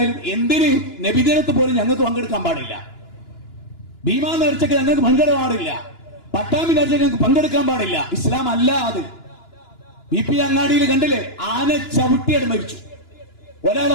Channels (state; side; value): late; right; 2.9 ms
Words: എന്തിന് നബിദിനത്ത് പോലും ഞങ്ങൾക്ക് പങ്കെടുക്കാൻ പാടില്ല. ഭീമാ നേർച്ചയ്ക്ക് ഞങ്ങൾക്ക് പങ്കെടുക്കാൻ പാടില്ല. പട്ടാമ്പി നേർച്ചയ്ക്ക് ഞങ്ങൾക്ക് പങ്കെടുക്കാൻ പാടില്ല. ഇസ്ലാം അല്ല അത്. BP അങ്ങാടിയിൽ കണ്ടില്ലേ, ആന ചവിട്ടിയത് മരിച്ചു.